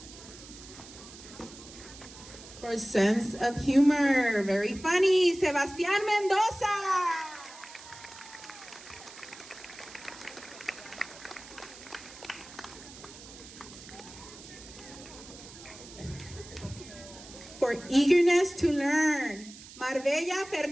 For sense of humor, very funny, Sebastián Mendoza. For eagerness to learn, Marbella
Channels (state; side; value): noise; right; hiss, 17 dB below the sound